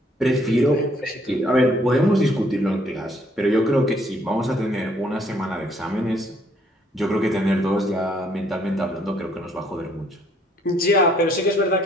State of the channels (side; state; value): both; normal; correlation 0.66